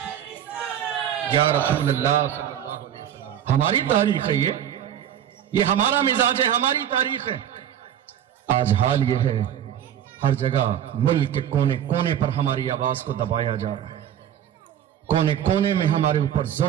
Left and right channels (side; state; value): left; quieter; 10.1 dB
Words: یا رسول اللہ صلی اللہ علیہ وسلم۔ ہماری تاریخ ہے یہ ہمارا مزاج ہے، ہماری تاریخ ہے۔ آج حال یہ ہے، ہر جگہ ملک کے کونے کونے پر ہماری آواز کو دبایا جا رہا ہے، کونے کونے میں ہمارے اوپر